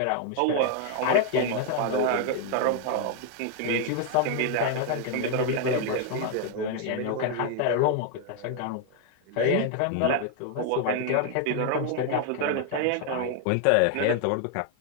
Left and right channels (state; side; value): different; both; correlation 0.00